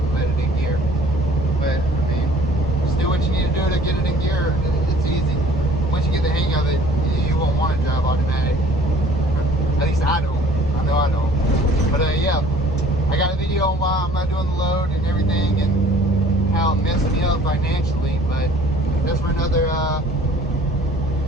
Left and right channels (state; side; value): normal; both; correlation 0.53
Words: let it in gear. But I mean, just do what you need to do to get it in gear. It's easy. Once you get the hang of it, you won't want to drive automatic. At least I don't. I know I don't. But yeah, I got a video on why I'm not doing the load and everything and how it messed me up financially. But that's for another.